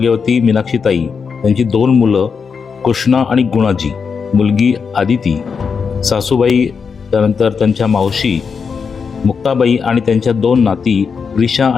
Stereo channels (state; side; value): quieter; right; 5.8 dB